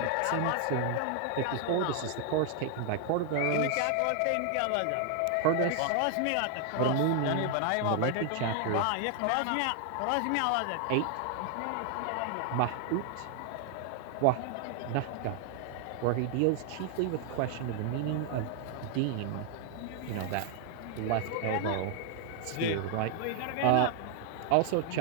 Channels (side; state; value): both; different; correlation 0.00